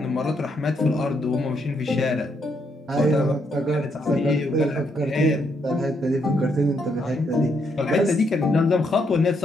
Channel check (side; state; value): both; normal; correlation 0.75